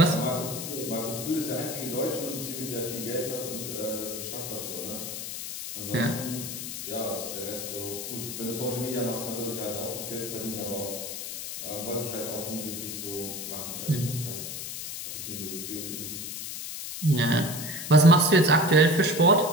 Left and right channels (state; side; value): noise; left; hiss, 7 dB below the sound